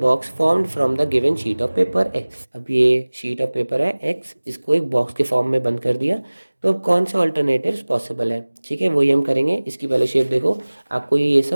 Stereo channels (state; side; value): inverted; both; correlation -1.00